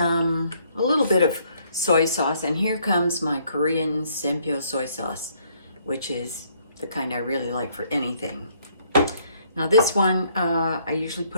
little bit of soy sauce. And here comes my Korean Sempyo soy sauce, which is the kind I really like for anything. Now this one, I usually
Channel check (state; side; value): inverted; both; correlation -0.67